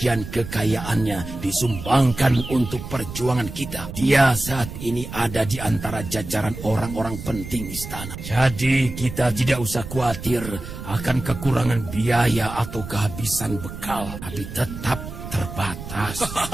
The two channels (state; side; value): noise; right; rumble, 10 dB below the sound